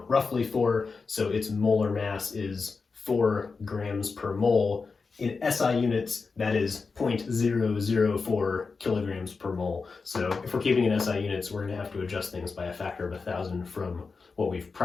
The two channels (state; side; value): quieter; right; 4.6 dB